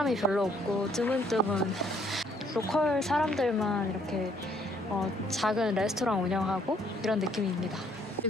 별로 없고 드문드문 로컬 사람들만 이렇게 작은 레스토랑 운영하고 이런 느낌입니다.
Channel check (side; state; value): right; noise; hum, 29 dB below the sound